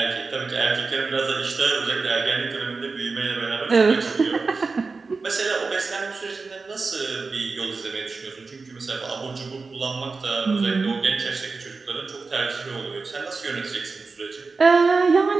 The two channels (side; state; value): left; quieter; 4.2 dB